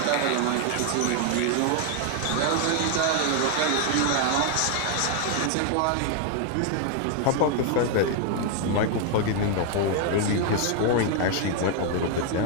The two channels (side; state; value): both; different; correlation 0.01